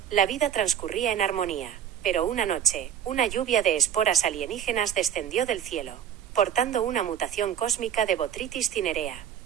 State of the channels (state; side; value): quieter; left; 9.4 dB